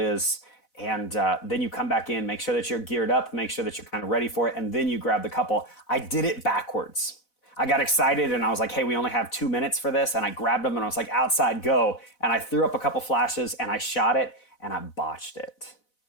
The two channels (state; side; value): late; right; 4.0 ms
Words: And then you come back in, make sure that you're geared up, make sure that you're kind of ready for it. And then you grab the couple. I did it backwards. I got excited and I was like, hey, we only have 2 minutes for this. And I grabbed them and I was like, outside, go. And I threw up a couple flashes and I shot it and I botched it.